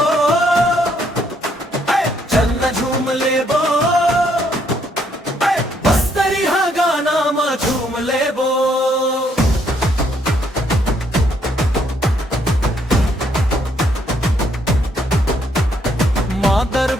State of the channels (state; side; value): normal; both; correlation 0.71